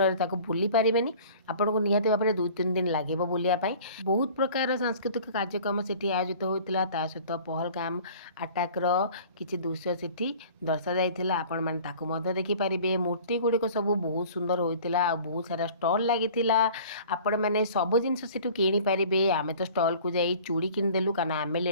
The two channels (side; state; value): both; inverted; correlation -0.46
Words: ତାକୁ ବୁଲି ପାରିବେନି। ଆପଣଙ୍କୁ ନିହାତି ଭାବରେ 2-3 ଦିନ ଲାଗିବ ବୁଲିବା ପାଇଁ। ବହୁତ ପ୍ରକାର ସାଂସ୍କୃତିକ କାର୍ଯ୍ୟକ୍ରମ ସେଠି ଆୟୋଜିତ ହୋଇଥିଲା, ତା ସହିତ ପହଲଗାମ ଆଟାକର କିଛି ଦୃଶ୍ୟ ସେଠି ଦର୍ଶାଯାଇଥିଲା। ଆପଣମାନେ ତାକୁ ମଧ୍ୟ ଦେଖିପାରିବେ। ମୂର୍ତ୍ତି ଗୁଡ଼ିକ ସବୁ ବହୁତ ସୁନ୍ଦର ହୋଇଥିଲା, ଆଉ ବହୁତ ସାରା ଷ୍ଟଲ୍ ଲାଗିଥିଲା। ଆପଣମାନେ ସବୁ ଜିନିଷ ସେଠୁ କିଣିପାରିବେ। ଆମେ ତ ଷ୍ଟଲ୍କୁ ଯାଇ ଚୁଡ଼ି କିଣିଦେଲୁ, କାରଣ ଆମେ